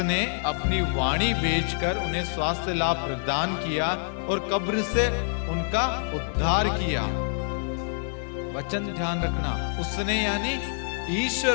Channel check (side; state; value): right; silent; digital silence